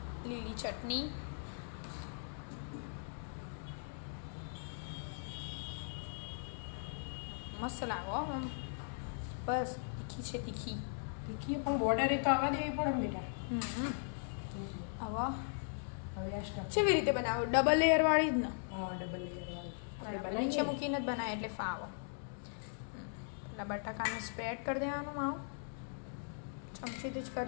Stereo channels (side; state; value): right; silent; digital silence